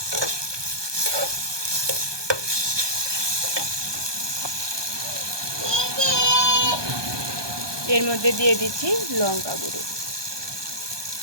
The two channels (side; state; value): left; late; 1.2 ms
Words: এর মধ্যে দিয়ে দিচ্ছি লঙ্কা গুঁড়ো।